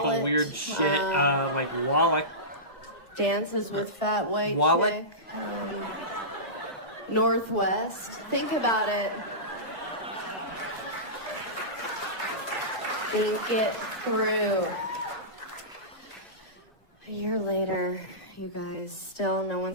weird shit, like Wallach. Dances with fat white Wallet? chick. Northwest. Think about it. Think it through. A year later, you guys, still no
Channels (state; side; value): late; right; 2.0 ms